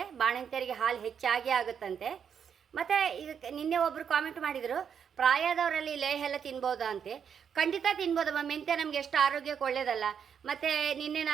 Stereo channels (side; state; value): left; quieter; 7.6 dB